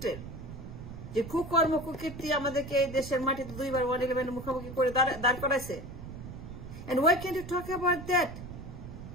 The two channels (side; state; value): right; noise; rumble, 11 dB below the sound